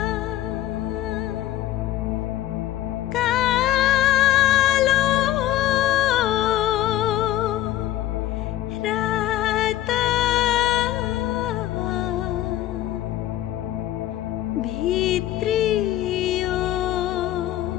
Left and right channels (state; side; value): quieter; right; 13.7 dB